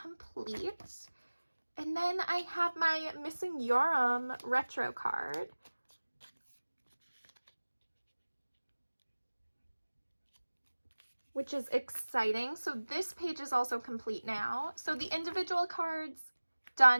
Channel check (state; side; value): inverted; both; correlation -1.00